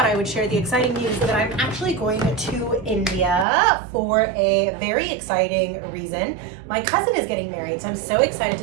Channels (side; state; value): left; drops out; at 3.5 s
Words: I would share the exciting news that I'm actually going to India for a very exciting reason. My cousin is getting married, so I'm so excited